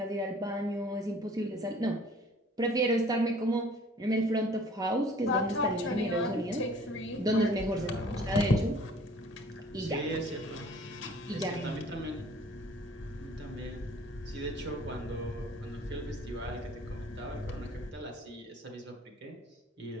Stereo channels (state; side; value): normal; both; correlation 0.52